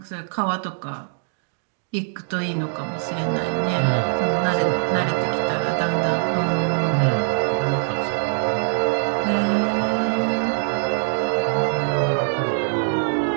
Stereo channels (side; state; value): left; silent; digital silence